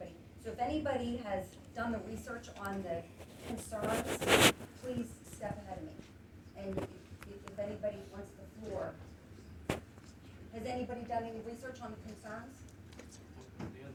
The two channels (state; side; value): identical; both; correlation 1.00